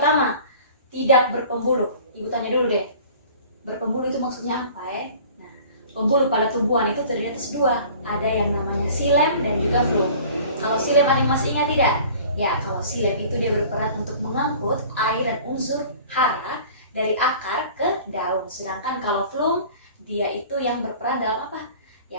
tidak berpembuluh. Ibu tanya dulu deh, berpembuluh itu maksudnya apa ya? Nah, pembuluh pada tumbuhan itu terdiri atas 2. Ada yang namanya xilem dan juga phloem. Kalau xilem ada yang masih ingat tidak? Ya, kalau xilem itu dia berperan untuk mengangkut air dan unsur hara dari akar ke daun. Sedangkan kalau phloem, dia itu yang berperan dalam apa?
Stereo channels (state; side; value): inverted; both; correlation -0.46